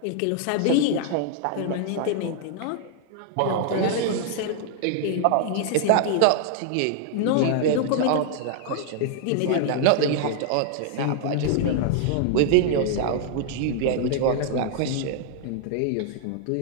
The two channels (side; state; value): both; different; correlation -0.01